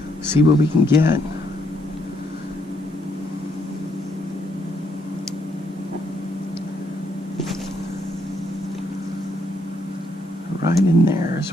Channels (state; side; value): normal; both; correlation 0.73